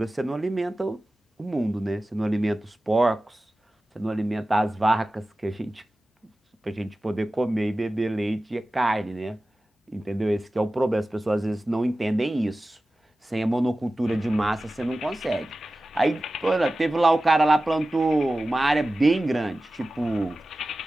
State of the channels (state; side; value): normal; both; correlation 0.95